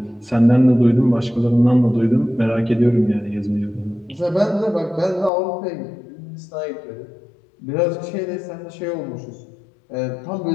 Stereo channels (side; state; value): right; drops out; at 5.3 s